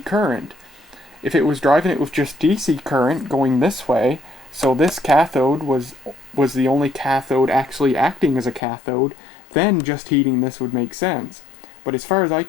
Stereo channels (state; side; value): drops out; right; at 8.6 s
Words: current. If it was driving it with just DC current going this way, so this cathode was the only cathode actually acting as a cathode, then just heating this would make sense. But as far as I